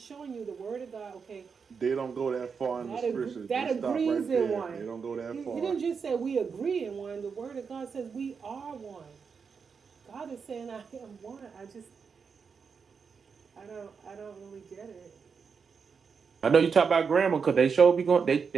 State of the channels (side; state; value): left; quieter; 5.8 dB